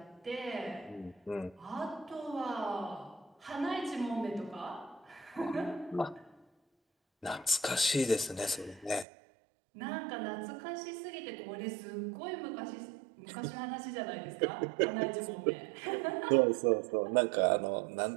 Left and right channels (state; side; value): drops out; left; at 9.1 s